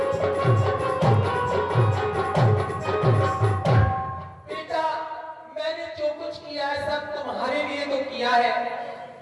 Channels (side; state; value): both; identical; correlation 1.00